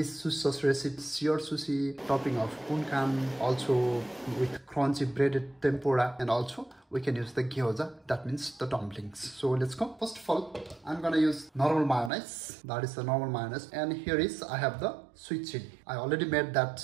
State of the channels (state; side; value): drops out; left; at 12.1 s